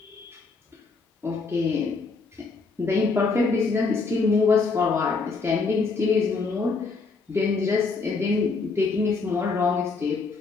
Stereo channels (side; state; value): right; quieter; 4.3 dB